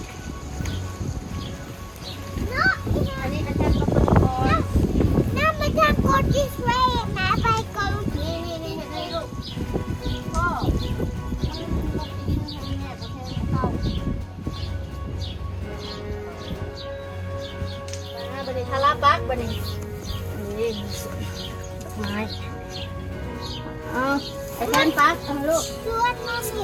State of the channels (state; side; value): identical; both; correlation 1.00